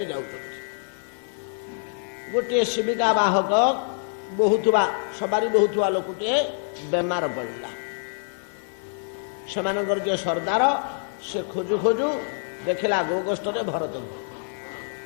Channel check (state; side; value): silent; right; digital silence